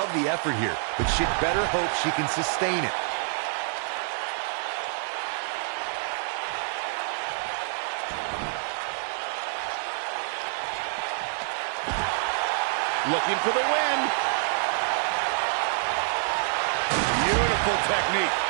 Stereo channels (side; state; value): left; silent; digital silence